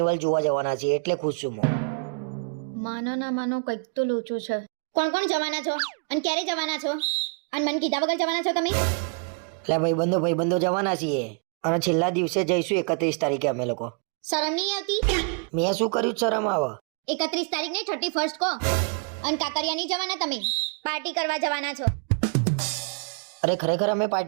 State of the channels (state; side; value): quieter; left; 37.6 dB